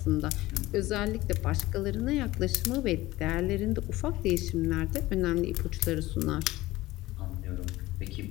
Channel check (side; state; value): right; quieter; 18.0 dB